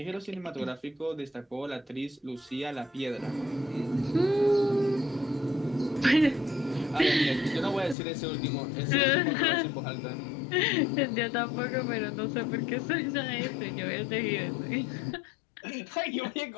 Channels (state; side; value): drops out; right; at 8.0 s